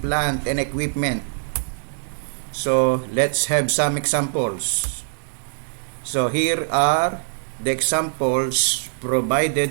and equipment. So let's have some examples. So here are the examples provided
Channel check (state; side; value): silent; left; digital silence